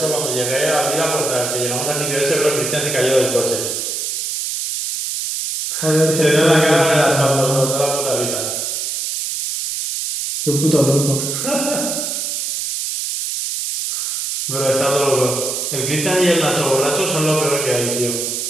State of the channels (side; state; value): right; noise; hiss, 3 dB below the sound